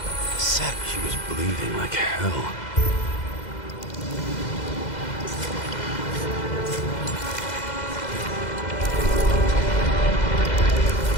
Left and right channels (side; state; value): right; late; 2.0 ms